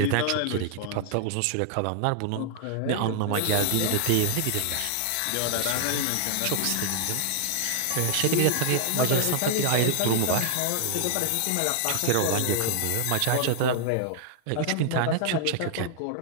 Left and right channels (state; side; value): different; both; correlation -0.01